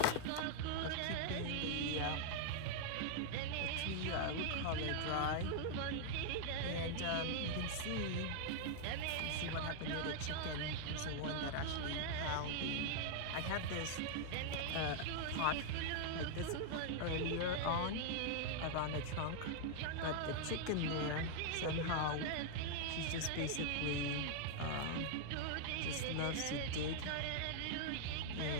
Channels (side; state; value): both; different; correlation -0.01